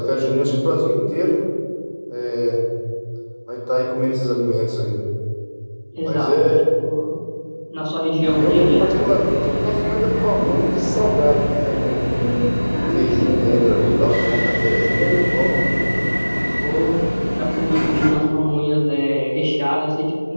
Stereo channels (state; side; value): inverted; both; correlation -1.00